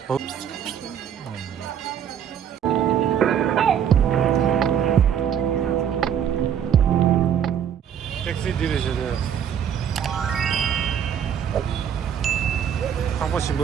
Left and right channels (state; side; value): quieter; left; 8.8 dB